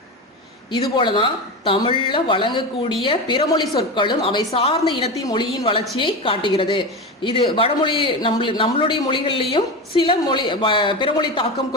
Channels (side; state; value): both; normal; correlation 0.21